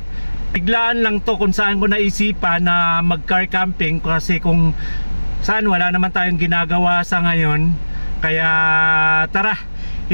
Biglaan lang to kung saan ko naisipan na mag-car camping, kasi kung saan wala naman tayong ginagawa sa ngayon. Kaya tara,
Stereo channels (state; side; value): inverted; both; correlation -1.00